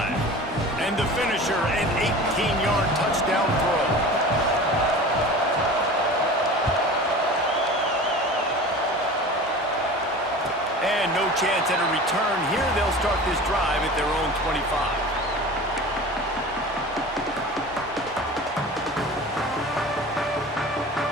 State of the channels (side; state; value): both; normal; correlation 0.37